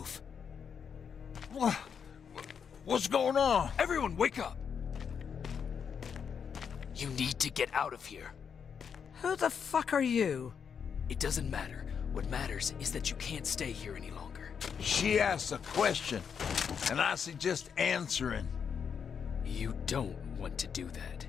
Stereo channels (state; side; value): quieter; right; 6.9 dB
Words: What's going on? Everyone, wake up! You need to get out of here. Who the fuck are you? It doesn't matter. What matters is that you can't stay here any longer. She asked a question, and I suggest answering. You don't want to do that.